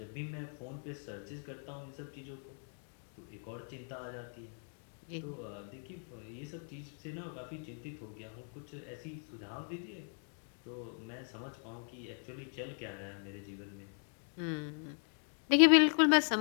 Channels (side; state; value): right; silent; 52 dB below the other